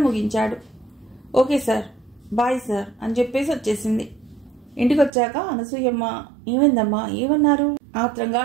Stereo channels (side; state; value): left; drops out; at 5.1 s